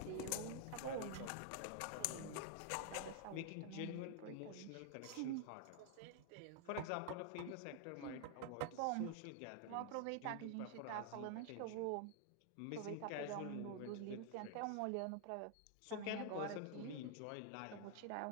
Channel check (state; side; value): different; both; correlation 0.00